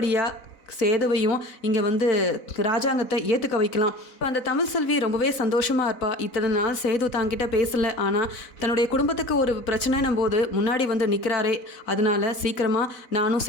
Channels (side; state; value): right; late; 4.0 ms